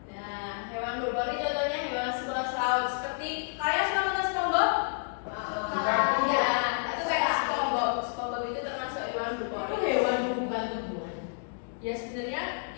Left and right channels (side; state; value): right; silent; digital silence